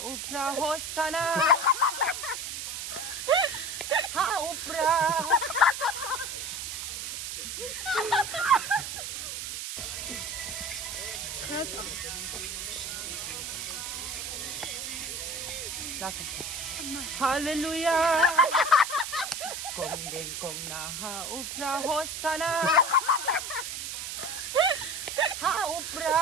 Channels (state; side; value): noise; right; hiss, 5 dB below the sound